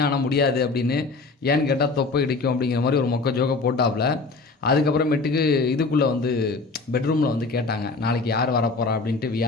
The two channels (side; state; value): right; quieter; 3.9 dB